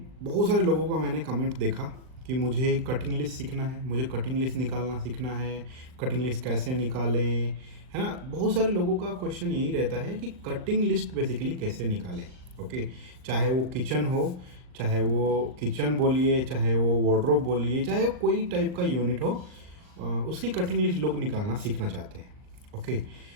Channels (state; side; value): late; left; 39 ms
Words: बहुत सारे लोगों का मैंने कमेंट देखा कि मुझे कटिंग लिस्ट सीखना है, मुझे कटिंग लिस्ट निकालना सीखना है, कटिंग लिस्ट कैसे निकालें, है ना। बहुत सारे लोगों का क्वेश्चन यही रहता है कि कटिंग लिस्ट बेसिकली कैसे निकालें। ओके, चाहे वो किचन हो, चाहे वो किचन बोलिए, चाहे वो वार्डरोब बोलिए, चाहे वो कोई टाइप का यूनिट हो, उसकी कटिंग लिस्ट लोग निकालना सीखना चाहते हैं। ओके,